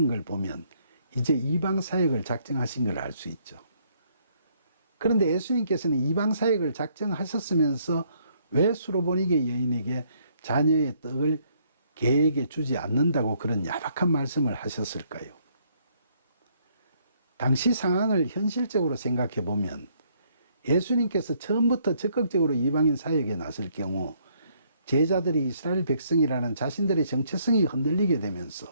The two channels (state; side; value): inverted; both; correlation -0.68